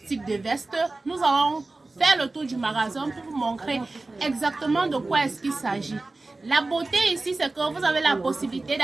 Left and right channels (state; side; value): quieter; left; 3.2 dB